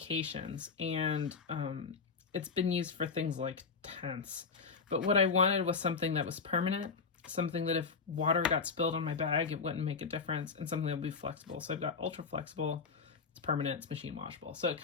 and it's been used for things like tents. But what I wanted was something that was permanent, something that if water got spilled on my bag, it wouldn't make a difference, and something that would be flexible. So I've got ultra flexible, it's permanent, it's machine washable. So it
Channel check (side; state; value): right; quieter; 5.0 dB